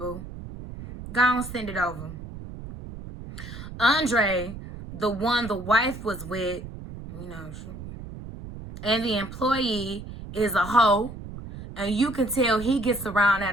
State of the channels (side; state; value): right; noise; rumble, 12 dB below the sound